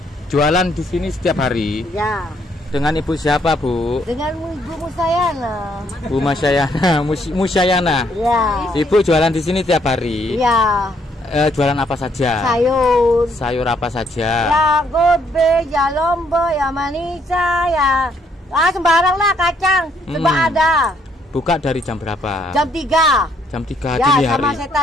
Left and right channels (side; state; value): both; normal; correlation 0.70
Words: jualan di sini setiap hari. Ya. Dengan ibu siapa, Bu? Dengan Ibu Musayana. Bu Musyayana, Musyayana. Ya. Ibu jualan di sini tiap hari. Ya. Jualan apa saja? Sayur. Sayur apa saja? Ya gobe, ya lombok, ya manisa, ya sembarang lah kacang, coba ada. Buka dari jam berapa? Jam 3. Jam 3 ya, dini hari. Sama